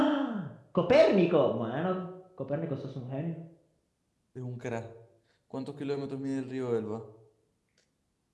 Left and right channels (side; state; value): both; identical; correlation 1.00